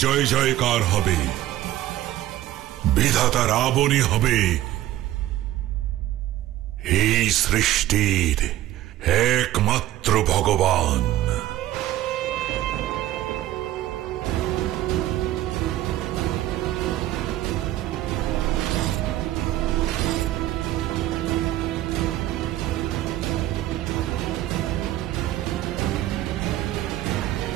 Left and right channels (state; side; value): quieter; left; 14.4 dB